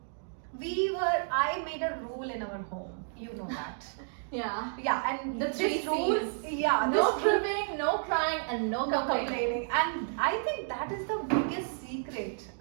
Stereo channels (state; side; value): silent; left; digital silence